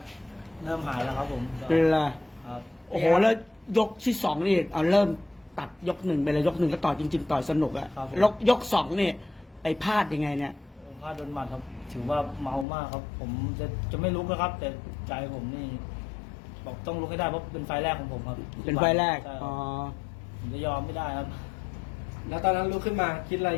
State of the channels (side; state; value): right; drops out; at 12.7 s